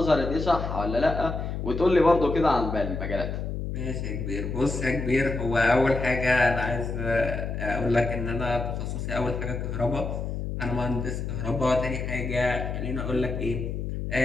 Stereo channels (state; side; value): noise; left; hum, 4 dB below the sound